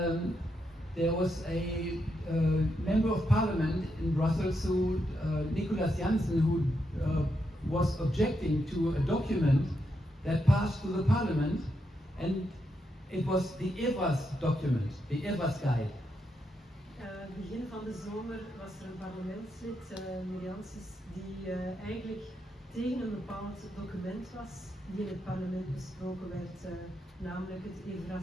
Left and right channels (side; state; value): both; normal; correlation 0.82